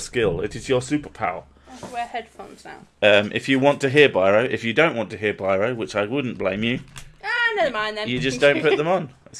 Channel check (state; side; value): identical; both; correlation 1.00